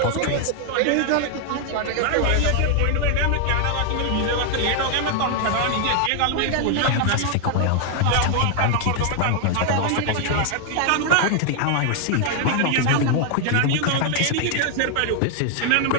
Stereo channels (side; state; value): both; different; correlation 0.00